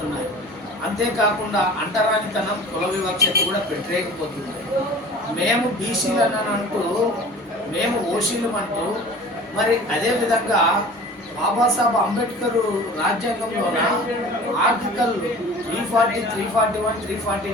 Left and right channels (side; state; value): both; normal; correlation 0.42